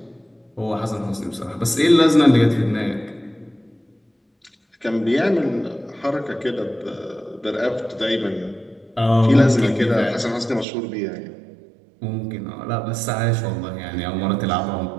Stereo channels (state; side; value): drops out; left; at 10.7 s